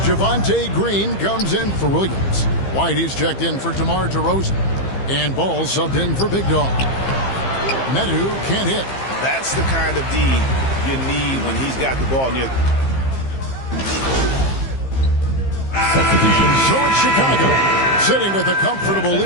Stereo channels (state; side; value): late; right; 15 ms